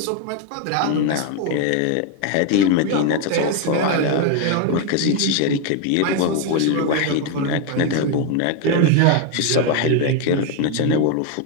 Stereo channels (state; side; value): different; both; correlation 0.01